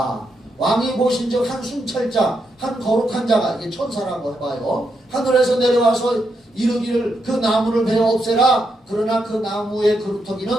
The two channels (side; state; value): both; normal; correlation 0.82